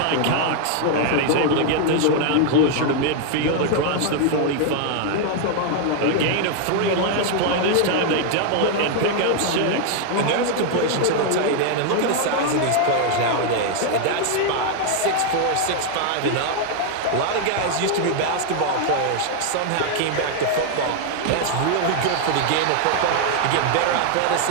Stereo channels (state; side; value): different; both; correlation 0.00